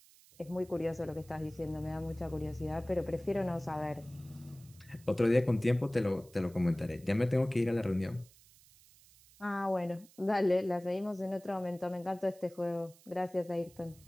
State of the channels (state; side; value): noise; right; hiss, 25 dB below the sound